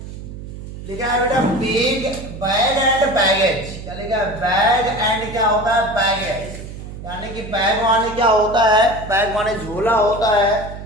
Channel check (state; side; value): noise; right; hum, 11 dB below the sound